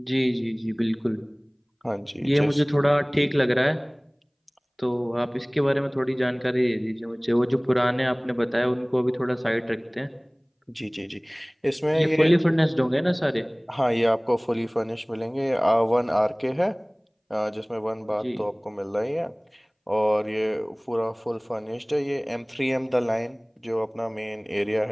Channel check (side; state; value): both; identical; correlation 1.00